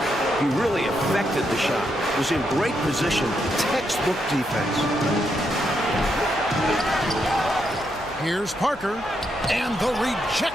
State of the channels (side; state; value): right; noise; hum, 20 dB below the sound